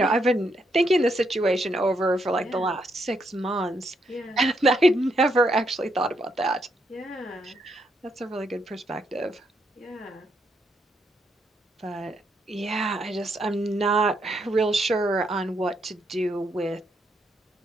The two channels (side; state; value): both; normal; correlation 0.77